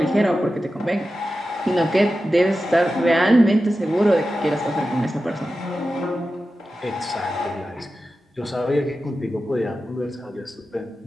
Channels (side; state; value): both; normal; correlation 0.92